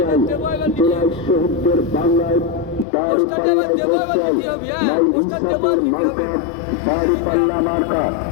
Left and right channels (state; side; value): drops out; right; at 2.9 s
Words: জেলায় শহীদদের বাংলায় দাঁড়িপাল্লায় ভোট চাই। নাই ইনসাফের মার্কা দাঁড়িপাল্লা মার্কা।